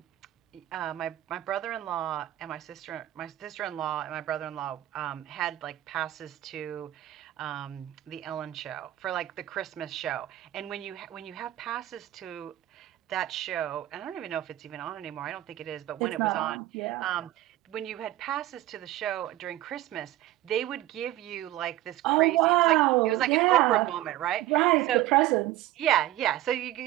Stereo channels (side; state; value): left; quieter; 15.0 dB